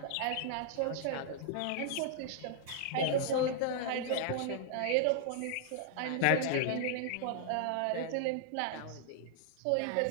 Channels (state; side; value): different; both; correlation -0.01